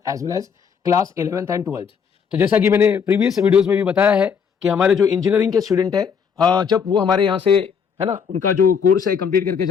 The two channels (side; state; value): right; quieter; 6.7 dB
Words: as well as class 11th and 12th। तो जैसा कि मैंने प्रीवियस वीडियोज में भी बताया है कि हमारे जो इंजीनियरिंग के स्टूडेंट है, जब वो हमारे यहाँ से है ना, उनका जो कोर्स है कंप्लीट करके